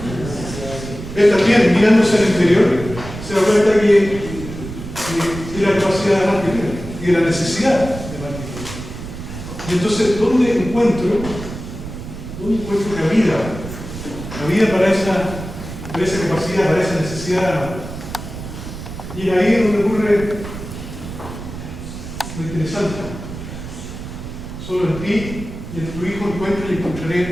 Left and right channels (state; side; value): noise; right; rumble, 10 dB below the sound